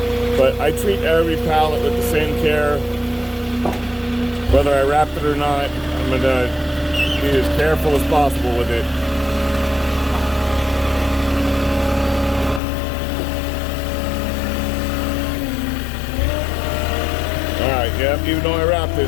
But I treat every pallet with the same care. Whether I wrap it or not, I'm gonna be as careful as possible with it. Alright, yep, even though I wrapped it,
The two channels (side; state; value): right; drops out; at 12.6 s